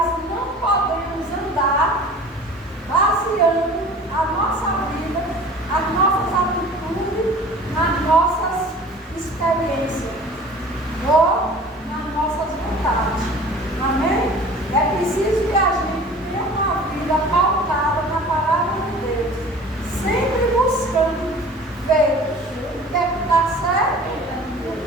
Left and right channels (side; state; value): both; normal; correlation 0.43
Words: não podemos andar baseando a nossa vida, as nossas atitudes, nas nossas experiências ou nas nossas vontades. Amém? É preciso que a gente tenha uma vida pautada na palavra de Deus, sempre buscando ver o que é que está certo e o